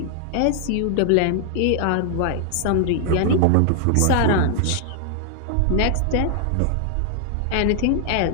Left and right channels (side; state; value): both; different; correlation 0.00